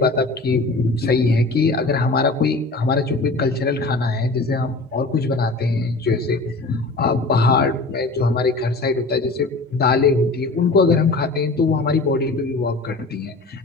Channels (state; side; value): quieter; right; 3.3 dB